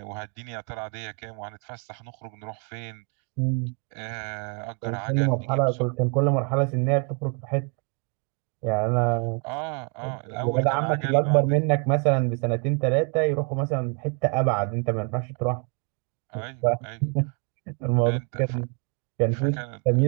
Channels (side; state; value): left; quieter; 36.3 dB